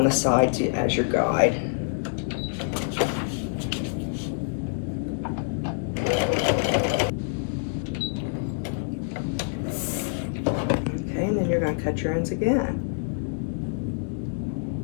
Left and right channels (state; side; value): silent; right; digital silence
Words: the side as your guide. Okay, and then you're going to cut your ends again.